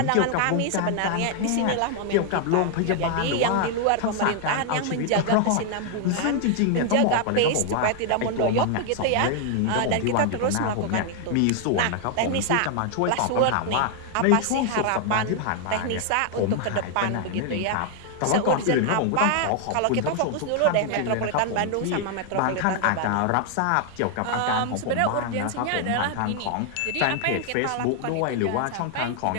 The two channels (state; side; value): different; both; correlation 0.00